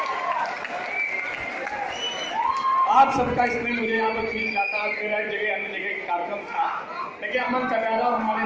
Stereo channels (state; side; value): identical; both; correlation 1.00